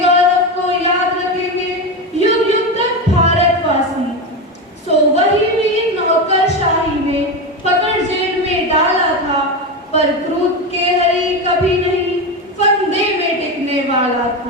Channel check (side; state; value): both; normal; correlation 0.17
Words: को याद रखेंगे युग युग तक भारतवासी। सो वही वीर नौकरशाही में पकड़ जेल में डाला था, पर क्रूर के हरी कभी नहीं फंदे में टिकने वाला